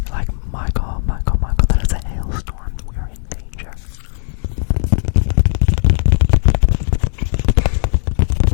Like Michael, that is a hailstorm. We are in danger.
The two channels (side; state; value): right; silent; digital silence